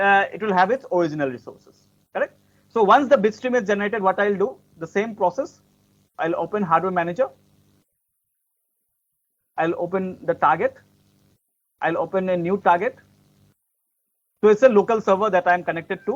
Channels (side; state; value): both; identical; correlation 1.00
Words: it will have its original resources, correct? So once the bitstream is generated, what I'll do, the same process, I'll open hardware manager, I'll open the target, I'll open a new target. So it's a local server that I'm connected